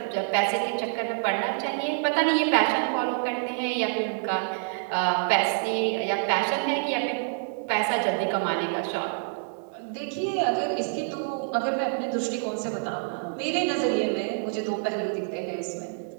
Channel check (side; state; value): left; silent; digital silence